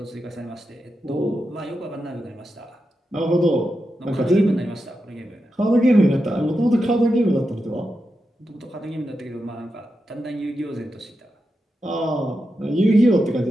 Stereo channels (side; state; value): both; normal; correlation 0.88